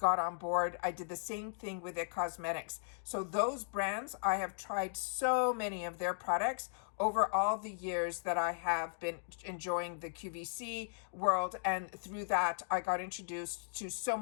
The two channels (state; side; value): silent; right; digital silence